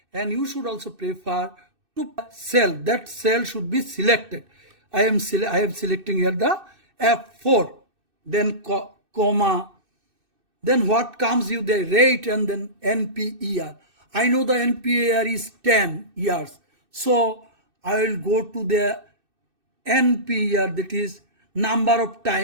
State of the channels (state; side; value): late; left; 2.6 ms